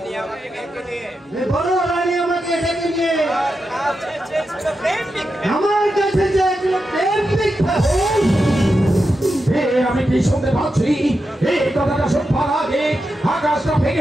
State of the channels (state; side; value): normal; both; correlation 0.88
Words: বড় রানী আমাকে ডেকে নিয়ে আমার কাছে যে প্রেমিক আমি কি শুনতে পাচ্ছি এই কথাটা শুনবার আগে আকাশটা